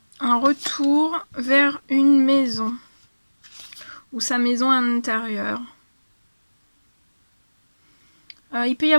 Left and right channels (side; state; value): both; inverted; correlation -1.00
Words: Un retour vers une maison. Ou sa maison intérieure. Il peut y